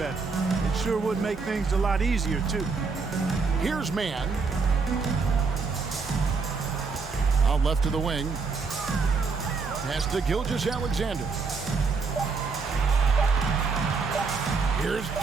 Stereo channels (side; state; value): left; quieter; 4.7 dB